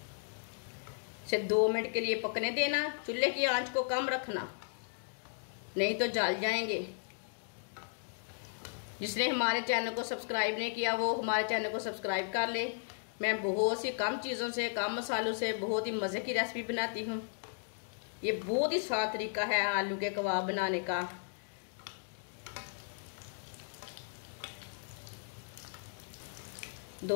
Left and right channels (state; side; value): silent; right; digital silence